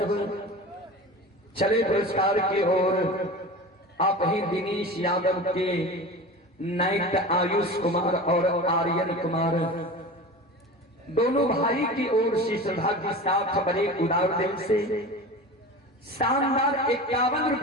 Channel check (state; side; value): normal; both; correlation 0.33